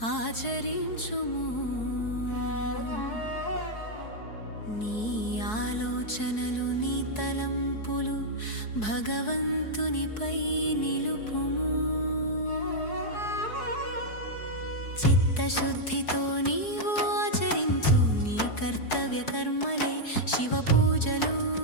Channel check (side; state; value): right; late; 4.7 ms